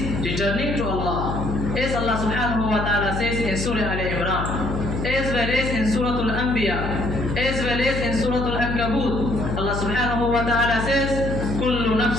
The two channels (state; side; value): noise; left; hum, 3 dB below the sound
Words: returning to Allah. As Allah subhanahu wa ta'ala says in Surah Al-Imran, as well as in Surah Al-Anbiya, as well as in Surah Al-Ankabut, Allah subhanahu wa ta'ala says, Kullu